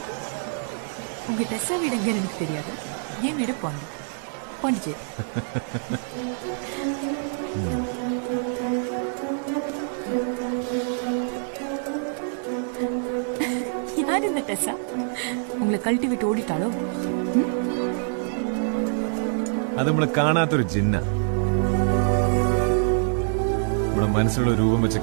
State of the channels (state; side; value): silent; left; digital silence